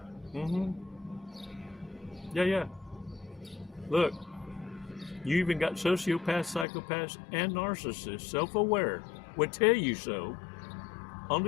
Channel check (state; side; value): drops out; right; at 6.7 s